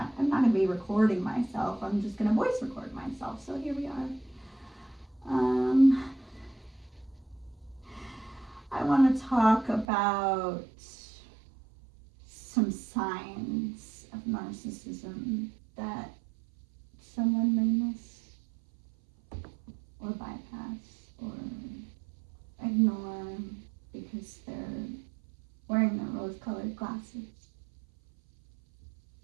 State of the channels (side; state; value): left; drops out; at 9.9 s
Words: not going to be recording myself. I'm just going to voice record myself. So here we are. I want to talk about some signs of narcissism that someone may miss or bypass or ignore because they're wearing their rose-colored glasses.